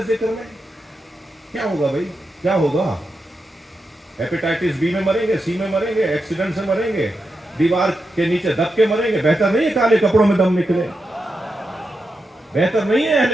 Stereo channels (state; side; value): normal; both; correlation 0.87